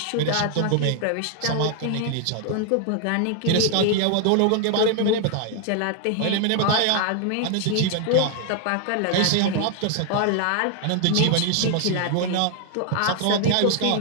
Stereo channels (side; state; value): both; different; correlation 0.00